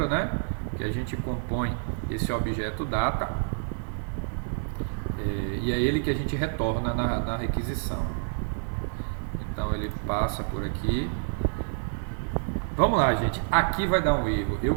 né, que a gente compõe esse objeto data, e é ele que a gente retorna na requisição. Então ele passa por aqui. Vamos lá, gente, aqui vai dar um erro. Eu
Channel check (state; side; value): silent; left; digital silence